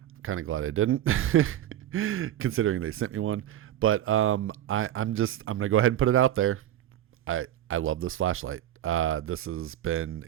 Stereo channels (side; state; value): left; quieter; 12.1 dB